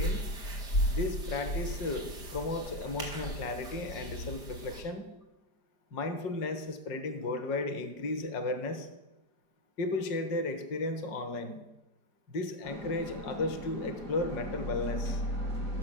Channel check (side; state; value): right; late; 4.9 ms